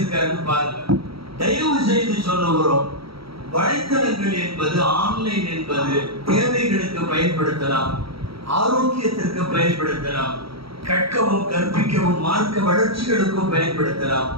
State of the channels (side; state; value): left; late; 0.75 ms